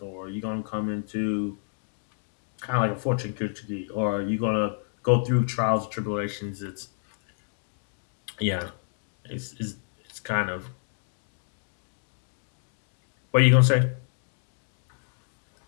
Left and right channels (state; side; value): silent; right; digital silence